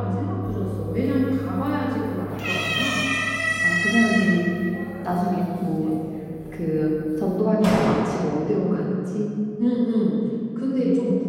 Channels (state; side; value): identical; both; correlation 1.00